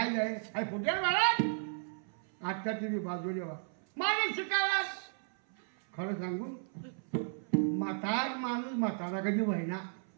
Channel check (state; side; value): silent; left; 55 dB below the other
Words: जाय अरे फुटेल महाराज आत्या तुम्ही बाजू देवा मारे शिकायला खरं सांगू म्हातार माणूस म्हातारा कधी व्हायना